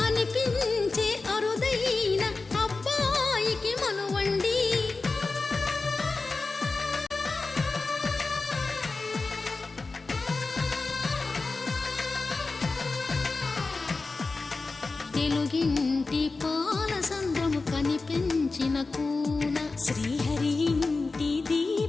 అనిపించే అరుదైన అబ్బాయికి మనువండి తెలుగింటి పాలసంద్రము కనిపించిన కూన శ్రీహరి ఇంటి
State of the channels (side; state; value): right; quieter; 3.8 dB